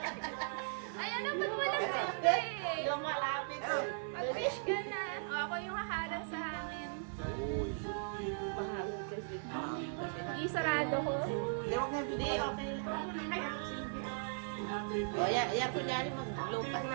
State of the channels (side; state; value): left; silent; digital silence